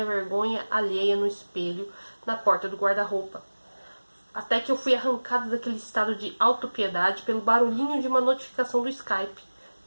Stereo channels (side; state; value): both; inverted; correlation -1.00